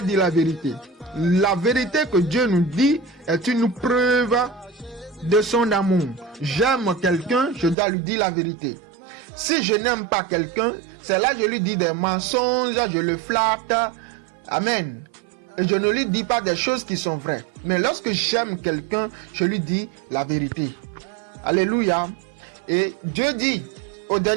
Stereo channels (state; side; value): drops out; left; at 7.8 s